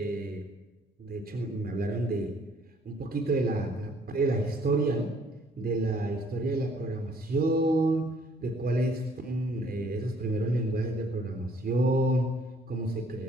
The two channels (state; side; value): normal; both; correlation 0.61